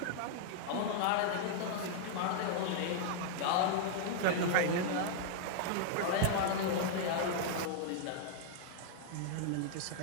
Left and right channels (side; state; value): both; different; correlation -0.01